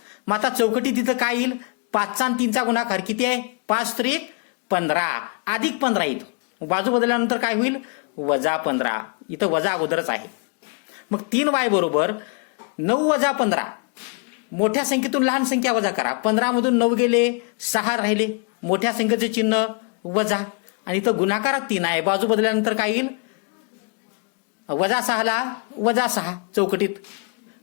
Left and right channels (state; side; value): quieter; right; 35.2 dB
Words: मग आता चौकटी तिथं काय येईल? 5चा आणि 3चा गुणाकार किती आहे? 5 त्रिक 15 अधिक 15 येईल. बाजू बदलल्यानंतर काय होईल? वजा 15. इथं वजा अगोदरच आहे. मग 3y बरोबर 9 वजा 15. मोठ्या संख्येतून लहान संख्या वजा करा. 15 मधून 9 गेले, 6 राहिले. मोठ्या संख्येचे चिन्ह वजा आणि इथं गुणाकारात 3 आहे. बाजू बदलल्यानंतर काय येईल? -6ला -6 चौकटीत.